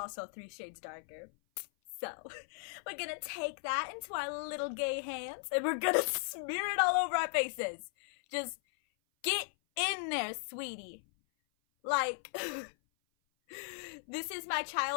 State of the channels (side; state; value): right; silent; 53 dB below the other